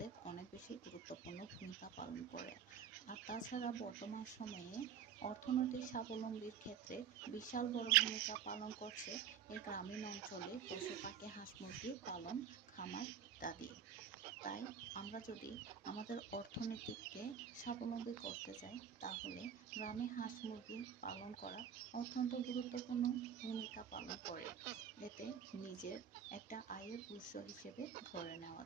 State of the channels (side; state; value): left; quieter; 8.1 dB